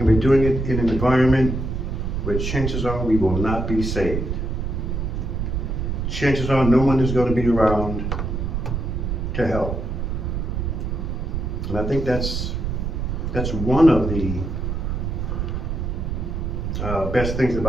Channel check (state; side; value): noise; right; rumble, 2 dB below the sound